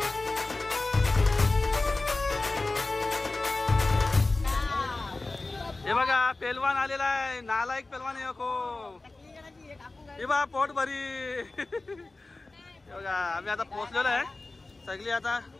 हे बघा, पेलवान आलेला आहे. नालायक पेलवान आहे को. हे बघा, पोट भरी. हे बघा, आम्ही आता पोहोचलेलो आहे सगळी. आता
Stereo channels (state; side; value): quieter; right; 3.2 dB